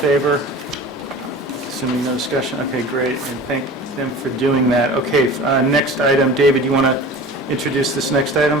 Assuming no discussion, okay, great, and thank them for doing that. Okay, next item, David, you want to introduce this next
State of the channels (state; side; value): normal; both; correlation 0.38